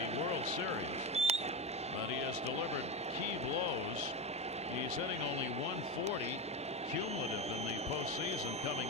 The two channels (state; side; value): normal; both; correlation 0.17